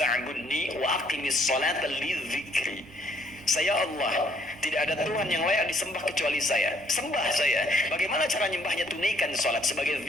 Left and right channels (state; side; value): noise; right; rumble, 25 dB below the sound